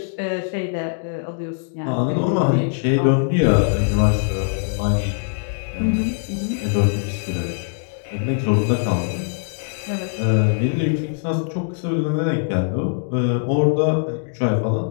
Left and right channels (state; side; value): silent; right; 65 dB below the other